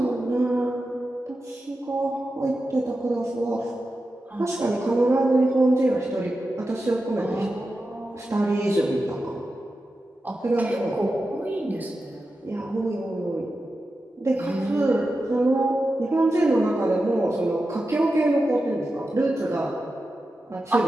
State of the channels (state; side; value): normal; both; correlation 0.91